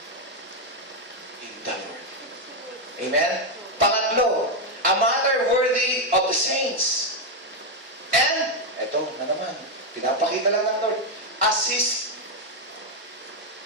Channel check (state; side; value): normal; both; correlation 0.04